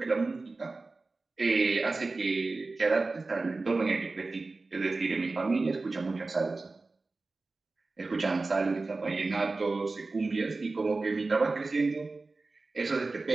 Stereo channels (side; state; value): left; quieter; 3.5 dB